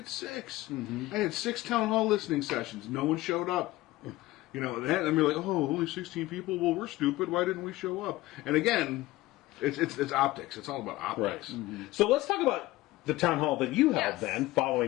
6. I had 6 town hall listening sessions. No one showed up. That, and we're like, only 16 people. Well, we're stupid. Why didn't we show up? And again, it's optics. It's all about optics. So let's talk about the town hall that you held Yes. then,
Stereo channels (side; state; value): right; quieter; 18.0 dB